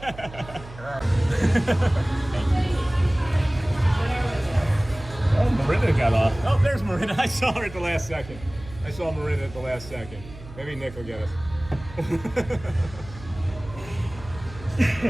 Oh, Marina got off. Oh, there's Marina. I saw her at the last second. I saw Marina at the last second. Maybe Nick will get us.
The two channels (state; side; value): noise; right; hum, 16 dB below the sound